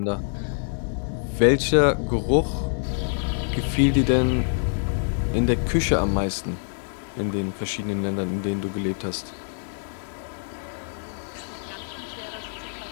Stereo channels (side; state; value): right; silent; digital silence